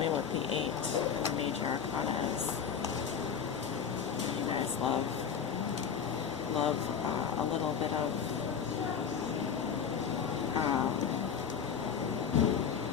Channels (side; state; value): right; quieter; 7.2 dB